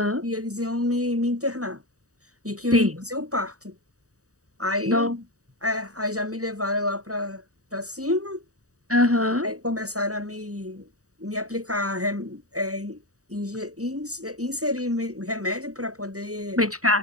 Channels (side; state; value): left; late; 0.66 ms